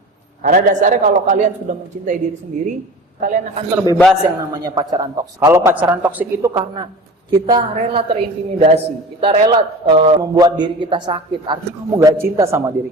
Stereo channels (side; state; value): both; normal; correlation 0.37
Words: Karena dasarnya kalau kalian sudah mencintai diri sendiri, kalian akan terbebas yang namanya pacaran toksik. Kalau pacaran toksik itu karena kita rela terintimidasi, kita rela membuat diri kita sakit, artinya kamu gak cinta sama